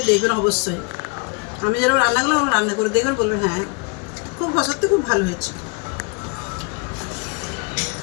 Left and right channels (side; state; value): right; quieter; 34.2 dB